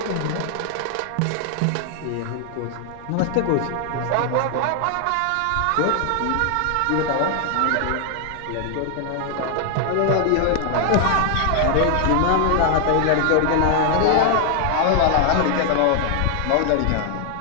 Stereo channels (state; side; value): different; both; correlation 0.00